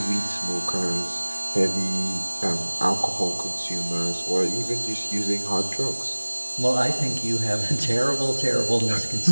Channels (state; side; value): inverted; both; correlation -1.00